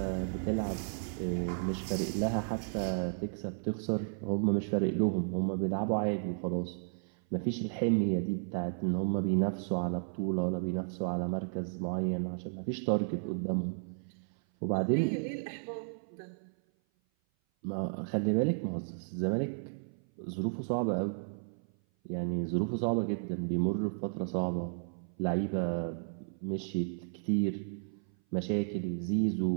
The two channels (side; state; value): left; silent; 55 dB below the other